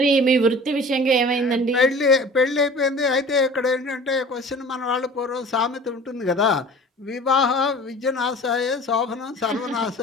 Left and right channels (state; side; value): normal; both; correlation 0.43